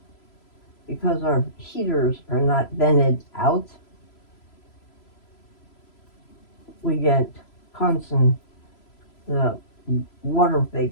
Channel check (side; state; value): right; late; 3.0 ms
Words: because our heaters are not vented out, we get constant water